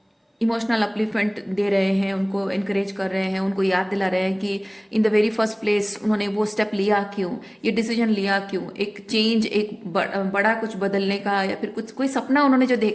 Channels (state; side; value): identical; both; correlation 1.00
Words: इमोशनल अपलिफ्टमेंट दे रहे हैं, उनको इनकरेज कर रहे हैं, उनको याद दिला रहे हैं कि in the very first place उन्होंने वो स्टेप लिया क्यों, ये डिसीजन लिया क्यों, एक चेंज, एक बड़ा कुछ बदलने का, या फिर कुछ कोई सपना उन्होंने जो